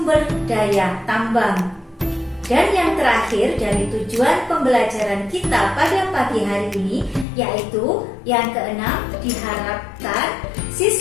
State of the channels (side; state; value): right; drops out; at 7.2 s